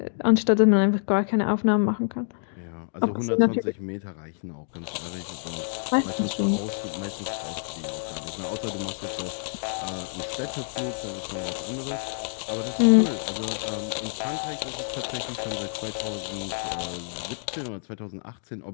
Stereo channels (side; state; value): right; silent; digital silence